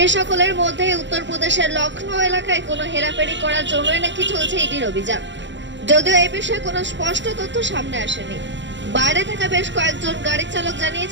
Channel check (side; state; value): left; late; 0.53 ms